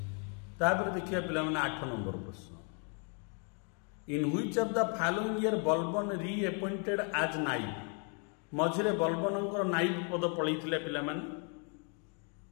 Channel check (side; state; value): right; quieter; 39.3 dB